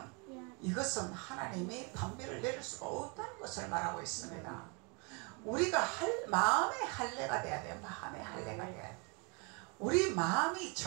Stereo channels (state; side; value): quieter; left; 33.1 dB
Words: 이것은 하나님이 단비를 내릴 수가 없다는 것을 말하고 있습니다. 우리가 마음의 할례가 돼야 돼요. 마음의 할례가 돼야 돼요. 우리 마음이